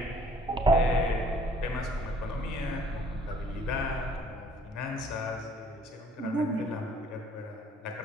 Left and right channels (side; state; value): both; normal; correlation 0.58